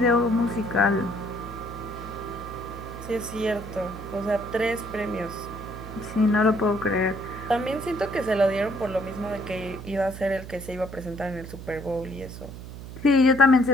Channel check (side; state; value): right; noise; hum, 12 dB below the sound